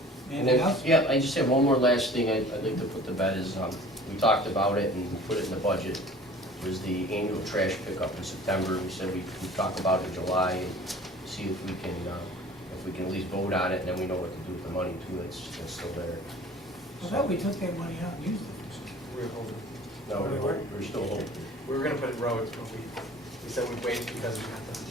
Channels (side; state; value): both; normal; correlation 0.46